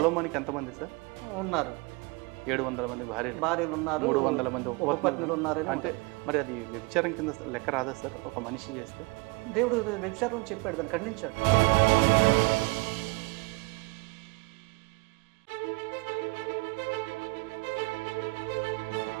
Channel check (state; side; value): quieter; left; 27.2 dB